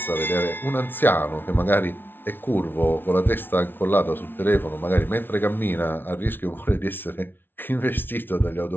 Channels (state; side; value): late; right; 0.10 ms